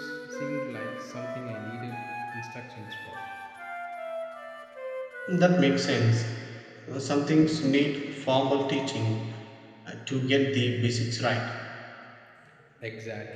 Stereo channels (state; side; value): identical; both; correlation 1.00